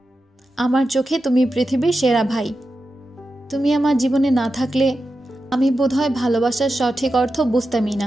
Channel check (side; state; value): both; normal; correlation 0.91